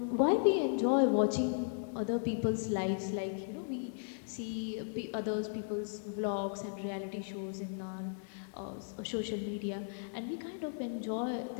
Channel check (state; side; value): silent; right; digital silence